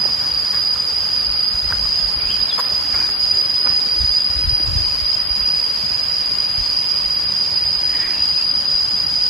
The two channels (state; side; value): normal; both; correlation 0.44